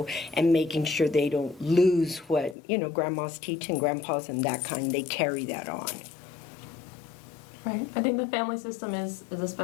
and making sure they don't lose what, grandma's teaching, grandpa's and that kind, they carry that on. Right. I think the family system is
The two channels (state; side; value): drops out; right; at 2.6 s